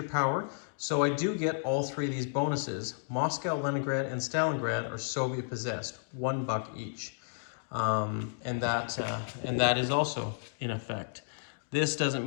power, so I do get all 3 of these bonuses. Moscow, Leningrad, and Stalingrad are Soviet possessed, $1 each. And that is also in effect. This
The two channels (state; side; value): silent; right; digital silence